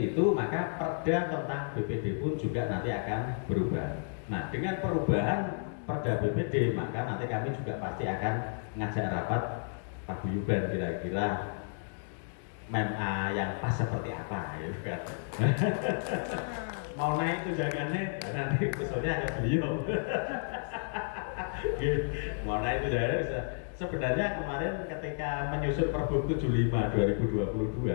itu maka perda tentang BPD pun juga nanti akan berubah. Nah, dengan perubahan perda BPD maka nanti kami juga pasti akan ngajak rapat paguyuban kira-kira MEMA yang pas seperti apa ya kan. Mau naik tunjangannya nanti usulnya ada beliau. Mau naik tunjangannya bisa. Sebenarnya kemarin ketika menyusun Pergub 75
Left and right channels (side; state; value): right; silent; digital silence